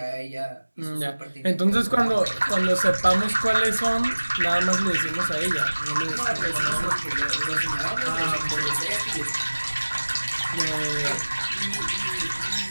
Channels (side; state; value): both; inverted; correlation -1.00